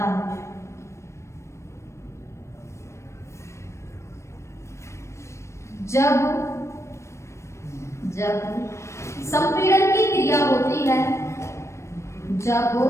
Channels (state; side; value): late; right; 0.13 ms